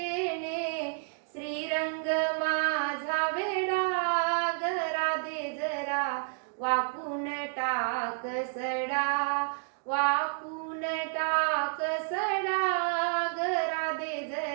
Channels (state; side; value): silent; left; digital silence